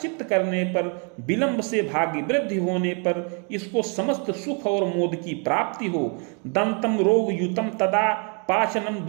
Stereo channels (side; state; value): left; quieter; 37.5 dB